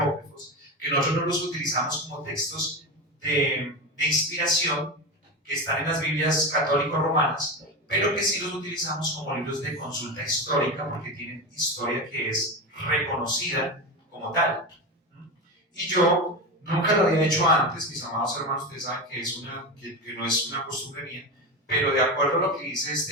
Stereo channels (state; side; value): normal; both; correlation 0.20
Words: que nosotros no los utilizamos como textos de inspiración, que están en las Biblias católico-romanas, pero que sí los utilizamos como libros de consulta histórica, porque tienen historia que es reconocida como tal. Y yo nunca lo había hecho antes, mis amados hermanos, ustedes saben que no es una costumbre mía, pero de acuerdo a lo que dice